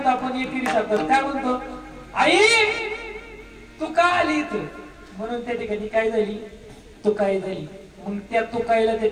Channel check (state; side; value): identical; both; correlation 1.00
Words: आपण एकेरी शब्दात काय म्हणतो? आई तू का आली इथं? म्हणून त्या ठिकाणी काय झाली? तू काय झाली. मग त्या तुकाईला त्या